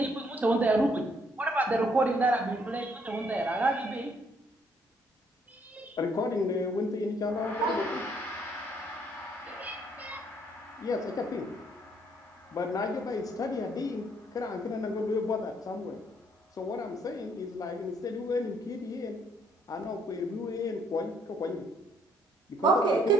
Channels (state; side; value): normal; both; correlation 0.68